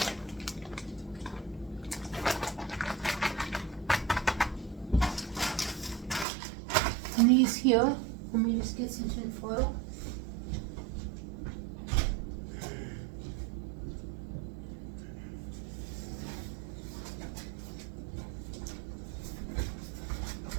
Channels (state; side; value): drops out; left; at 6.2 s